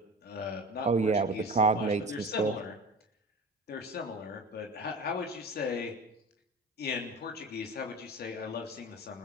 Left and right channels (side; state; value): both; normal; correlation 0.35